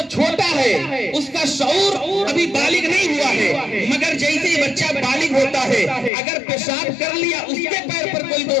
چھوٹا ہے، اس کا شعور ابھی بالغ نہیں ہوا ہے، مگر جیسے ہی بچہ بالغ ہوتا ہے اگر پیشاب کر لیا اس کے پیر پر کوئی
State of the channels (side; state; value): right; drops out; at 6.1 s